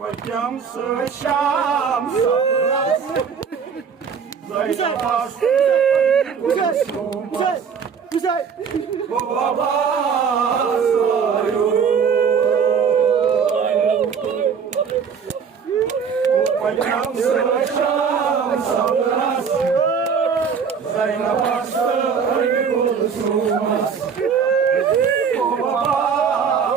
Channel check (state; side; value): quieter; left; 6.5 dB